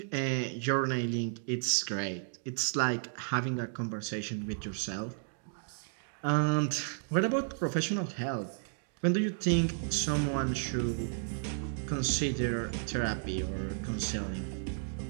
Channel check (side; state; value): left; silent; digital silence